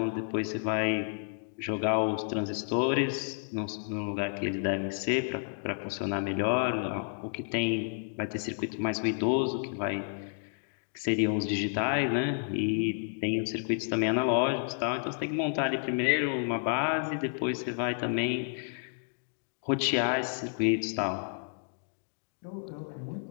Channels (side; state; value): right; silent; digital silence